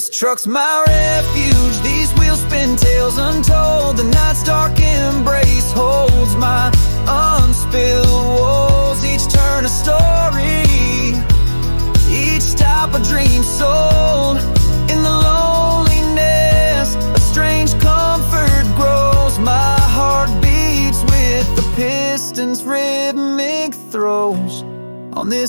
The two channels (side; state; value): both; inverted; correlation -1.00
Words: truck's my refuge, these wheels spin tales untold. The night's dark embrace holds my unspilled woes. Each turn a story, each stop a dream sold. In the loneliness, a strange comfort grows. My heart beats with the piston's rhythmic throws. On